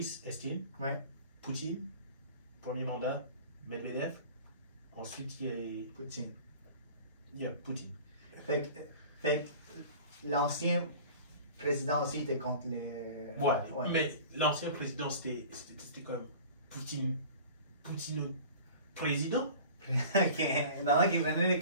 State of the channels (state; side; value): inverted; both; correlation -0.42